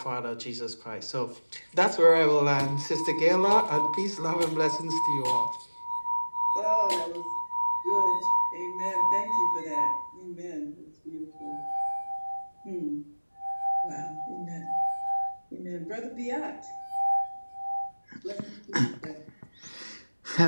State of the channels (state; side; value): inverted; both; correlation -1.00